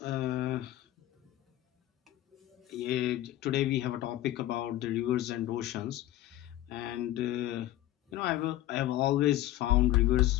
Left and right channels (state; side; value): quieter; right; 14.5 dB